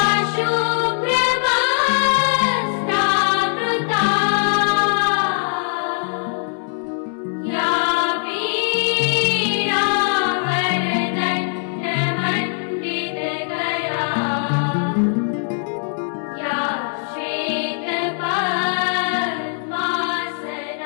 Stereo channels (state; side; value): silent; right; digital silence